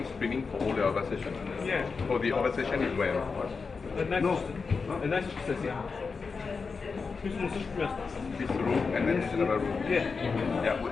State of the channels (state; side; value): quieter; right; 4.9 dB